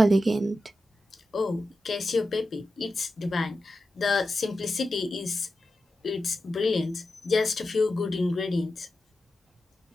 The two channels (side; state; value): both; normal; correlation 0.91